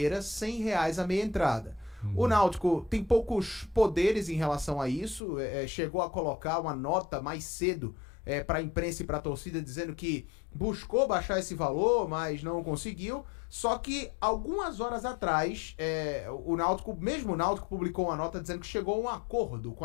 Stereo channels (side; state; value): right; drops out; at 5.2 s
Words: R$100 a meia entrada. O Náutico tem poucos poderes em relação a isso, chegou a colocar uma nota mais cedo para a imprensa e para a torcida, dizendo que buscou baixar esse valor, mas não conseguiu. Só que algumas horas atrás, o Náutico publicou uma nota dizendo que chegou a um acordo com